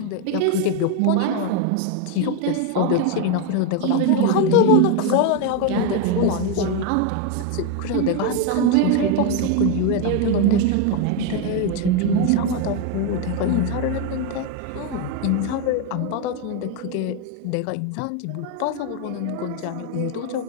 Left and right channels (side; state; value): both; different; correlation 0.02